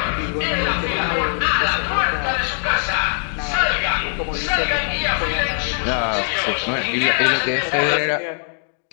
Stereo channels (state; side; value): silent; right; 65 dB below the other